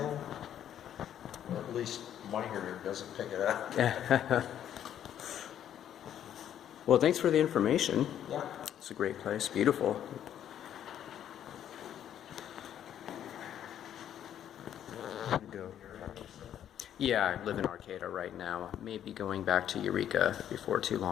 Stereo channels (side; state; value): right; quieter; 10.3 dB